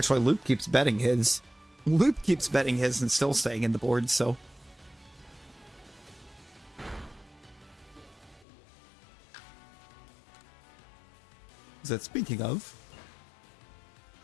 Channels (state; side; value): drops out; right; at 8.5 s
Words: Loop keeps betting his. Loop keeps betting his and still staying in the board, so. Is that speaking of?